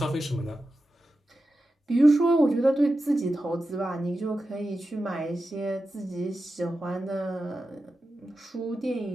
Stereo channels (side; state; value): both; normal; correlation 0.91